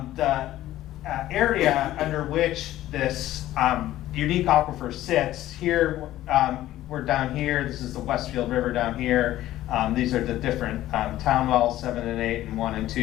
area under which this unique aquifer sits here. We're down here. This is the Westfield River down here. These are the different town wells, 7 and 8 and 1 and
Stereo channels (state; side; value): quieter; right; 14.4 dB